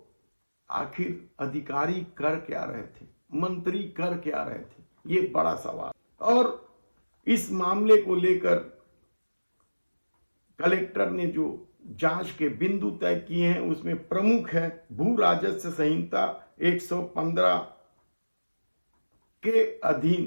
आखिर अधिकारी कर क्या रहे थे, मंत्री कर क्या रहे थे, ये बड़ा सवाल। और इस मामले को लेकर कलेक्टर ने जो जांच के बिंदु तय किए हैं उसमें प्रमुख है भू राजस्व संहिता 115 के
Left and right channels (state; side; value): inverted; both; correlation -1.00